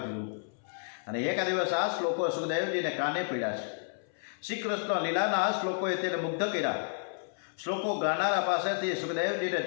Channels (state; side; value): silent; right; 57 dB below the other